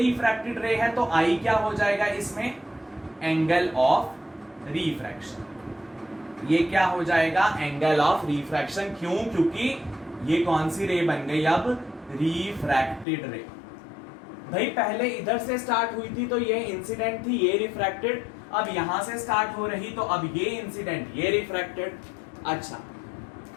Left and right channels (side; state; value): right; drops out; at 13.1 s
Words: रे है तो आई क्या हो जाएगा इसमें एंगल ऑफ रिफ्रैक्शन, ये क्या हो जाएगा एंगल ऑफ रिफ्रैक्शन। क्यों, क्योंकि ये कौन सी रे बन गई अब रिफ्रैक्टेड रे। भाई पहले इधर से स्टार्ट हुई थी तो ये इंसिडेंट थी, ये रिफ्रैक्टेड, अब यहां से स्टार्ट हो रही तो अब ये इंसिडेंट ये रिफ्रैक्टेड। अच्छा